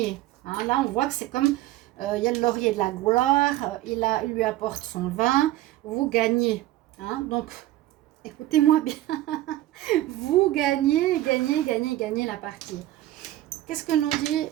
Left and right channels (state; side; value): quieter; left; 15.3 dB